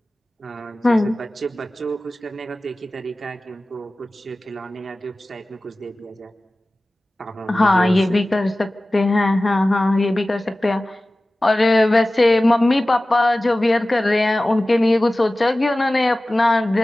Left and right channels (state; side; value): normal; both; correlation 0.97